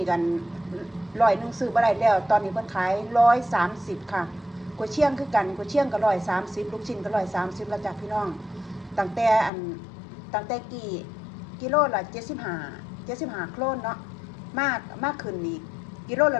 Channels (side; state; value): right; drops out; at 9.5 s